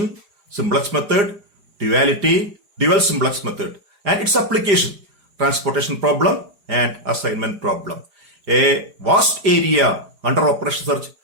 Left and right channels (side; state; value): left; late; 5.0 ms